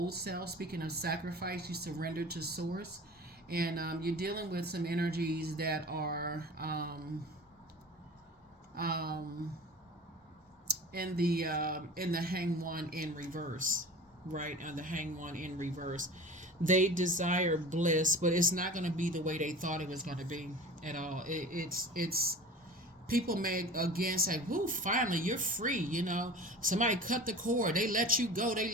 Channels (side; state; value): both; normal; correlation 0.38